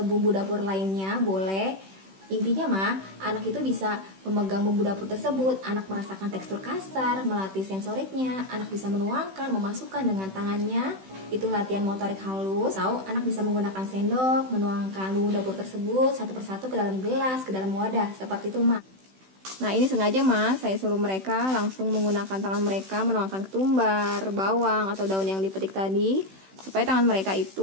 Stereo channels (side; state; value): left; late; 16 ms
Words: bumbu dapur lainnya, boleh. Intinya, mah, anak itu bisa memegang bumbu dapur tersebut, anak merasakan tekstur kasar, melatih sensoriknya, anak bisa menuangkan, memasukkan dengan tangannya, itu latihan motorik halus. Atau anak bisa menggunakan sendok, menuangkan bumbu dapur tersebut satu persatu ke dalam gelas, ke dalam wadah, seperti itu, mah. Nah, ini sengaja, mas, saya suruh mereka langsung menggunakan tangan mereka menuangkan ketumbar, bawang, atau daun yang dipetik tadi, supaya tangan mereka